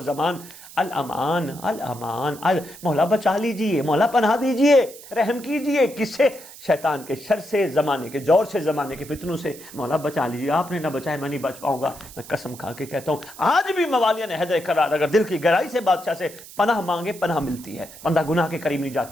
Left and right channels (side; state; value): right; noise; hiss, 17 dB below the sound